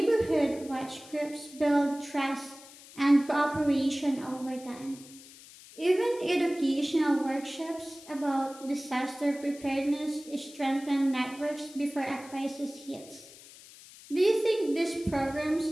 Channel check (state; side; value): noise; left; hiss, 20 dB below the sound